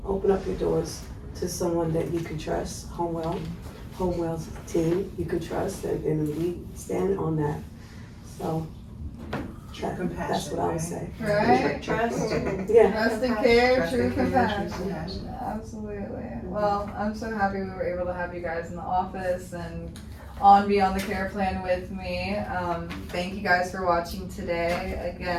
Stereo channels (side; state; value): both; identical; correlation 1.00